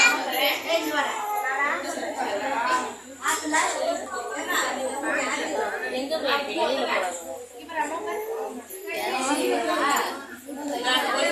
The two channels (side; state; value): both; identical; correlation 1.00